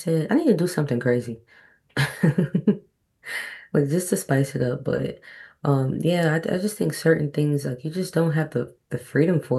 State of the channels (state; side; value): identical; both; correlation 1.00